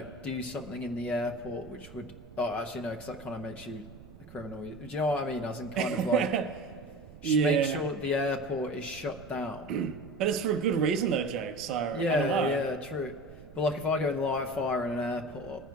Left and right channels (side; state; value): right; noise; rumble, 18 dB below the sound